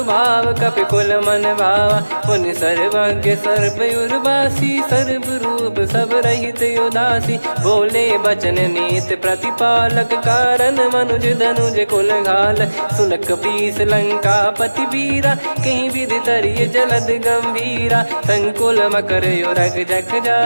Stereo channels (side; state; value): both; inverted; correlation -1.00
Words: कपि कुल मन भावा। मुनि सर्वज्ञ सर्वयुर्वासी, सर्व रूप सब रहित उदासी। बोले बचन नीत प्रतिपालक, कारण मनुज धनुज कुल घाल। सुन कपीस लंका पति वीरा, कहीं विधि तरिय जलद गंभीरा। संकुल मकर युरग जख